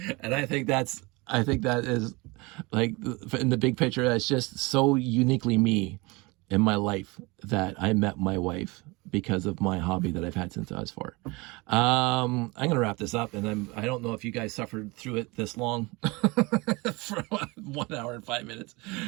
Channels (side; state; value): left; quieter; 25.1 dB